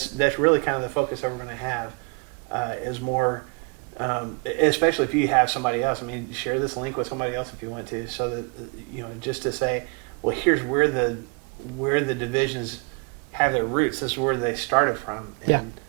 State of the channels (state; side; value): quieter; left; 32.7 dB